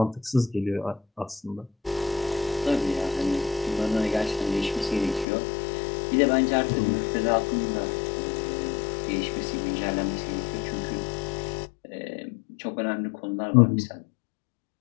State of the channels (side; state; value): right; drops out; at 5.2 s